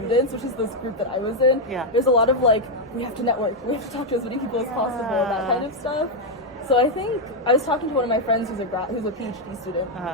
which is this group that I was in, there's a lot of like, we have to network, we have to talk to as many people as possible, that kind of stuff. So I think I was talking to one of my friends who's a PhD student,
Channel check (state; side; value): normal; both; correlation 0.01